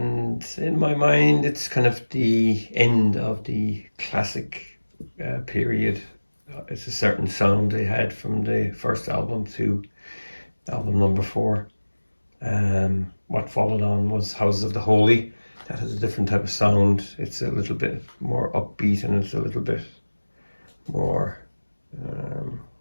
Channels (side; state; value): both; inverted; correlation -1.00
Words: in my mind, it's kind of the end of the classic period. It's a certain sound they had from the first album to album number 4. What followed on was Houses of the Holy. That has a different type of sound. It's a little bit more upbeat and it's a little bit more,